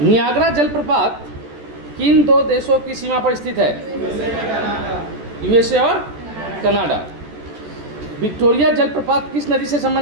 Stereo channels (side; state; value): left; late; 14 ms